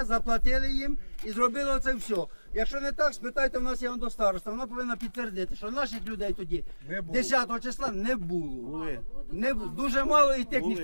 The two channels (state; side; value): inverted; both; correlation -1.00